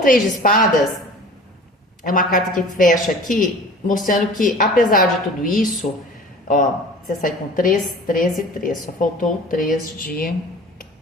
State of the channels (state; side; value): normal; both; correlation 0.42